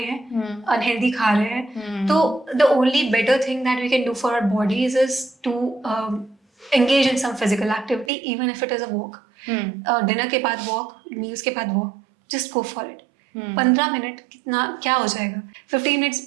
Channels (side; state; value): left; drops out; at 8.1 s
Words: हैं, अनहेल्दी खा रहे हैं। तो the only better thing that we can do for our bodies is to engage in some physical activity, even if it is a walk. Dinner के बाद वॉक, मील्स के बाद walk, just go for it. 15 minute कितना क्या हो जाएगा, 15